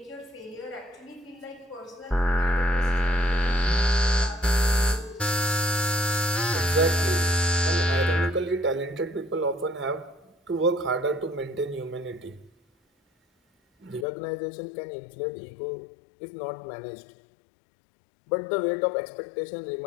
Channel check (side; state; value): right; drops out; at 14.1 s